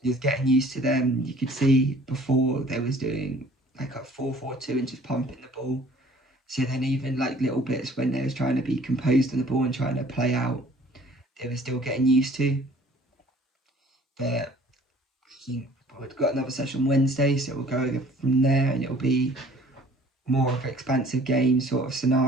just getting used to them. You could see before they was doing like a 4-4-2 and just pumping the ball. So then even like little bits when they was trying to be composed on the ball and trying to play out, they were still getting used to. But I think we've got another session Wednesday, so we'll go from there, and it'll be more of an expansive game sort of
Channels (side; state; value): both; normal; correlation 0.53